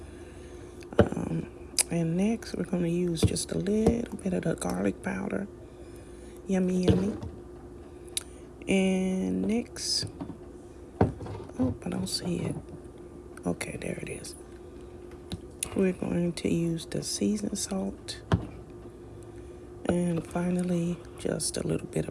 And next, we're going to use just a little bit of the garlic powder. Yummy, yummy. And next, oh, I don't see it. Okay, there it is. We're going to use the seasoned salt. And finally, just a little bit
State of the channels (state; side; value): identical; both; correlation 1.00